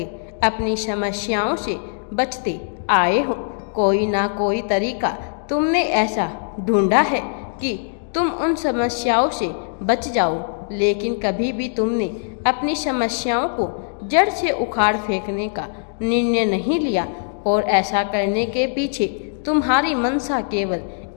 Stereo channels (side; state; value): right; silent; digital silence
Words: अपनी समस्याओं से बचते आए हो। कोई ना कोई तरीका तुमने ऐसा ढूंढा है कि तुम उन समस्याओं से बच जाओ, लेकिन कभी भी तुमने अपनी समस्याओं को जड़ से उखाड़ फेंकने का निर्णय नहीं लिया। और ऐसा करने के पीछे तुम्हारी मंशा केवल